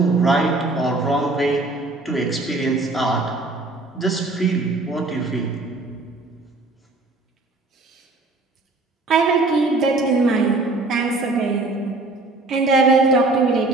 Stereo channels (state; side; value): quieter; left; 3.1 dB